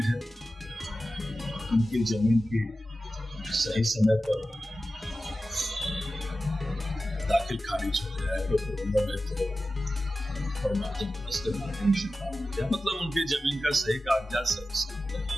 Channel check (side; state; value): both; normal; correlation 0.94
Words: है, उनकी जमीन की सही समय पर दाखिल खारिज हो जाए तो मतलब उनकी जमीन का सही कागजात